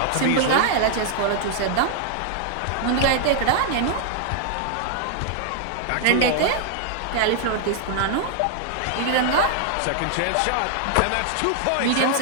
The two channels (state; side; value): different; both; correlation 0.00